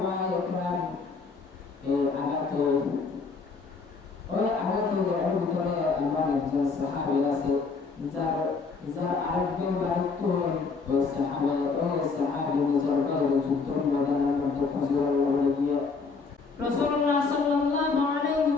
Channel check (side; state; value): right; quieter; 4.6 dB